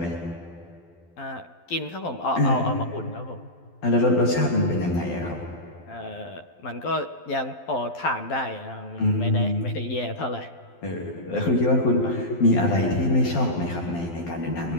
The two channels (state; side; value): late; right; 12 ms